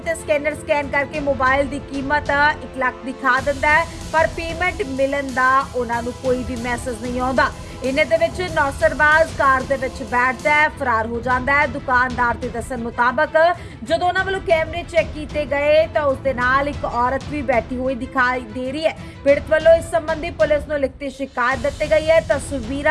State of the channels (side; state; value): both; identical; correlation 1.00